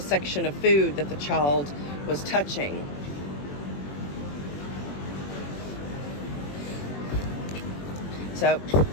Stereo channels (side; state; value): right; late; 21 ms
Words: section of food that the child was touching. So